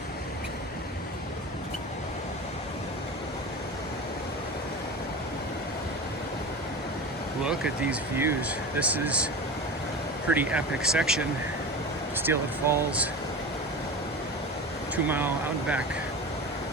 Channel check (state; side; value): normal; both; correlation 0.29